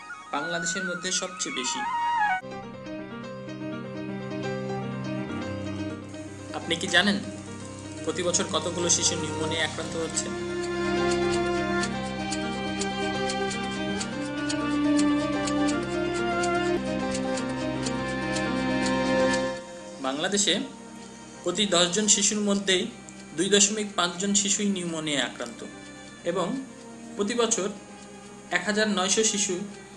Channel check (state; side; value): identical; both; correlation 1.00